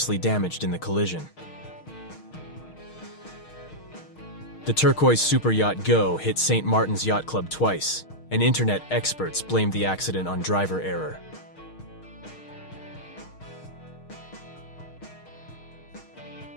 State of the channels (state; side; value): late; right; 6.4 ms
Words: damaged in the collision. The turquoise superyacht Go hit St. Martin's Yacht Club twice, and internet experts blamed the accident on driver error.